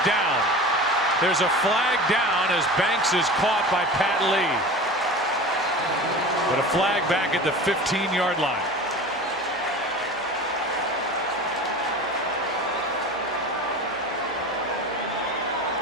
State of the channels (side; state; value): both; normal; correlation 0.34